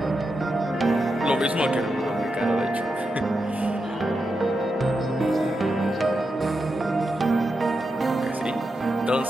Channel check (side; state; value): both; normal; correlation 0.87